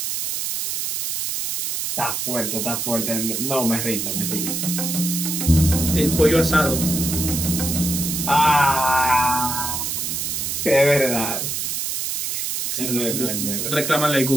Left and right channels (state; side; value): noise; right; hiss, 2 dB below the sound